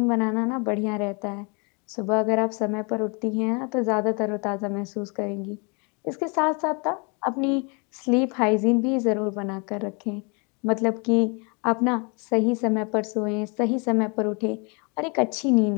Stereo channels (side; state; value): right; quieter; 32.9 dB